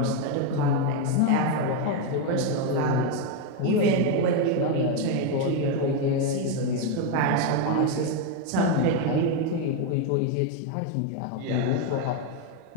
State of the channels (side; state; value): both; different; correlation 0.02